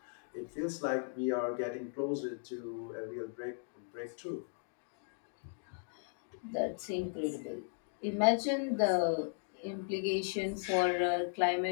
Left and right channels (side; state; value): right; silent; digital silence